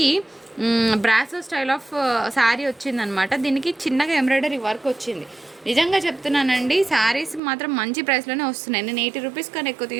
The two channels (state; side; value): drops out; left; at 7.4 s